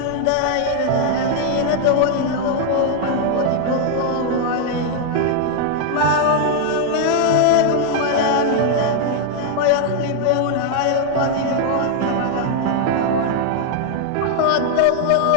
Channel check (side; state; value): both; different; correlation 0.00